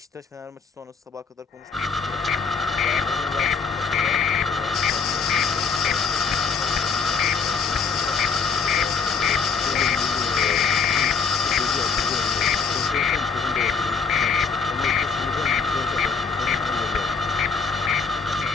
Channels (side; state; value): right; quieter; 5.3 dB